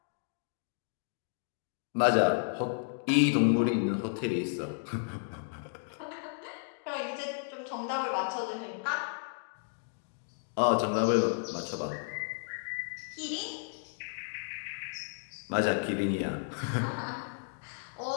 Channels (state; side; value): silent; right; digital silence